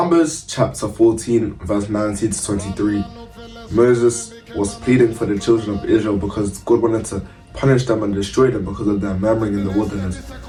chapter 14, verse 19 to 23, Moses was pleading for the children of Israel because God wanted to punish them and destroy them because of their murmuring in the wilderness,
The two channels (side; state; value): both; identical; correlation 1.00